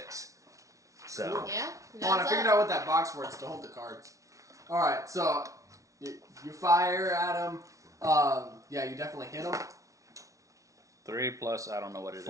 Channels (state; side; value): late; left; 0.16 ms